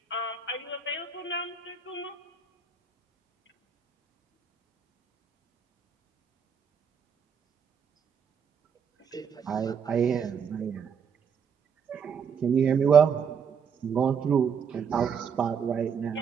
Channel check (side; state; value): left; quieter; 6.7 dB